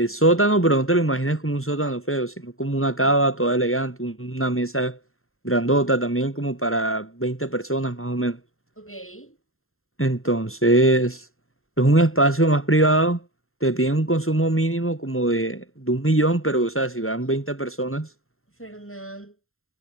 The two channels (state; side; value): late; right; 0.61 ms